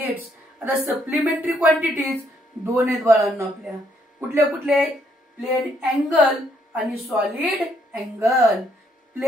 आता सप्लिमेंटरी क्वांटिटीज दोन आहेत बाळांनो आपल्या. कुठले कुठले? प्लेन अँगल आणि सॉलिड अँगल.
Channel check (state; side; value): normal; both; correlation 0.71